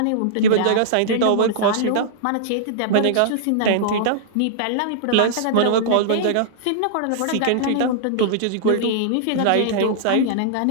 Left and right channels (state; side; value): different; both; correlation -0.02